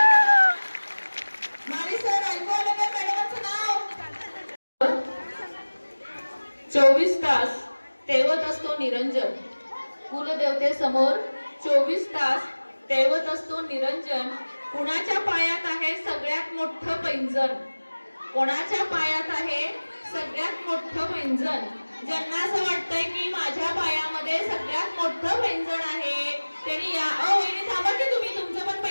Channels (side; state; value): both; inverted; correlation -1.00